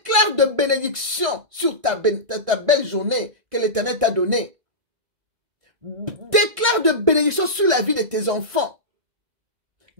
de bénédiction sur ta belle journée que l'Éternel t'a donnée. Déclare de bénédiction sur la vie de tes enfants.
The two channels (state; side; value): late; left; 1.6 ms